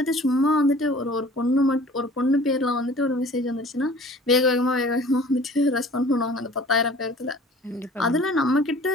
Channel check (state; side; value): normal; both; correlation 0.47